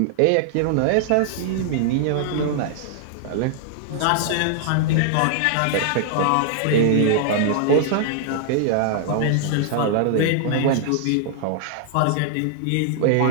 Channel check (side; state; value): both; different; correlation -0.01